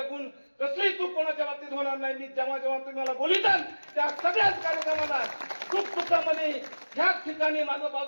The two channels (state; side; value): inverted; both; correlation -1.00